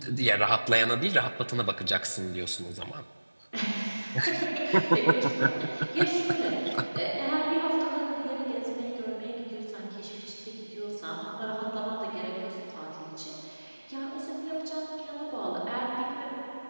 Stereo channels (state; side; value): inverted; both; correlation -1.00